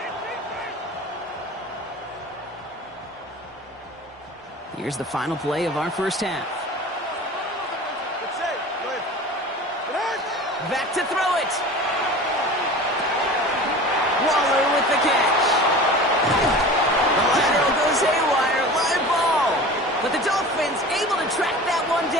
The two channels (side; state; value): both; normal; correlation 0.37